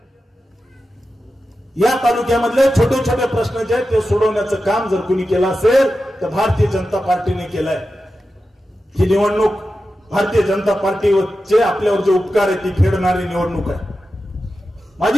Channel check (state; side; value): normal; both; correlation 0.92